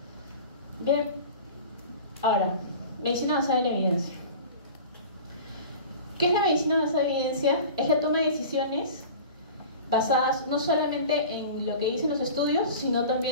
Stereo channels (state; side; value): inverted; both; correlation -0.38